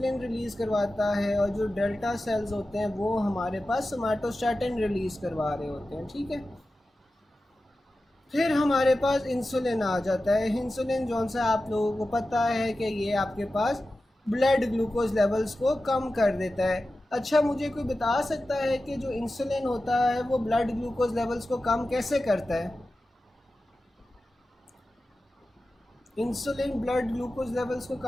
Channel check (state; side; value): normal; both; correlation 0.94